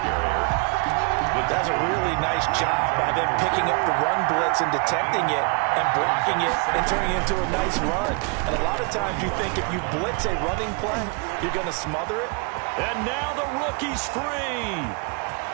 That's a really nice job by them picking up the run blitz and detecting it and blocking it and turning it into a nice run. And a lot of times you think if you blitz a running play, you're going to smother it. And now the rookie's free.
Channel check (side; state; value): left; quieter; 34.1 dB